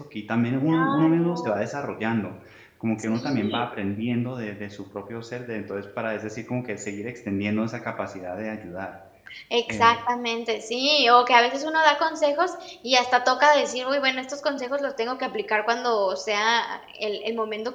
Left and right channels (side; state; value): both; identical; correlation 1.00